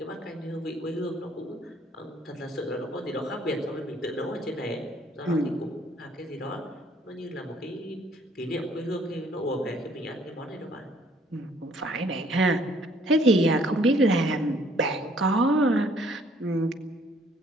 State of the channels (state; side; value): normal; both; correlation 0.62